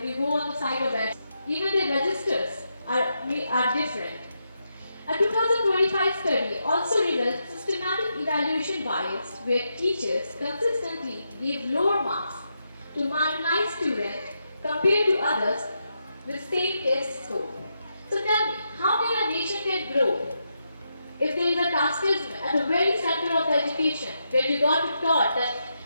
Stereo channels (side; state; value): both; inverted; correlation -0.84